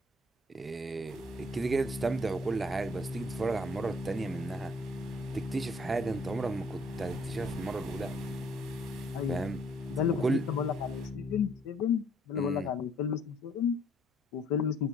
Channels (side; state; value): both; normal; correlation 0.63